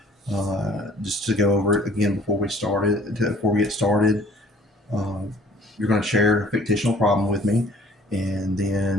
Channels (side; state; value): both; normal; correlation 0.54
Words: Just to go over it again before we get started, uh, you're going to share a fictional problem with me, and